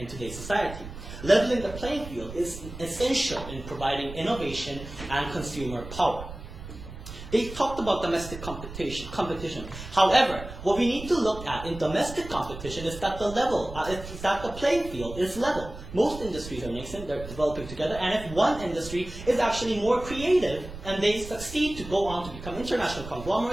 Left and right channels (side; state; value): right; noise; rumble, 12 dB below the sound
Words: today's society? Leveling the playing field is essential in providing innovation and consumer power. They talked about domestic competition. However, what we need to look at in domestic competition is that the playing field is level. Most industries are nascent, they're developing together, and if one industry is actually more creative and they succeed to go on to become international